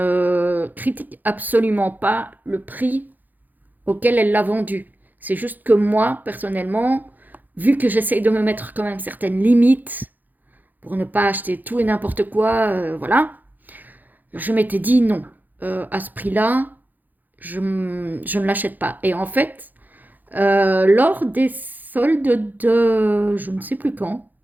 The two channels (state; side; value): late; left; 0.084 ms